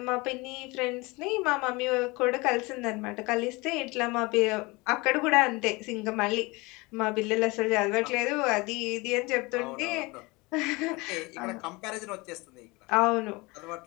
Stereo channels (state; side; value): quieter; right; 24.5 dB